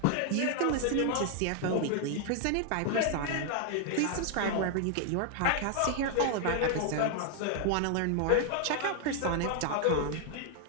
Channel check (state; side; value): different; both; correlation 0.00